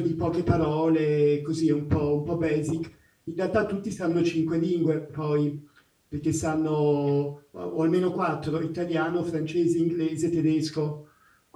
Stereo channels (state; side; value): identical; both; correlation 1.00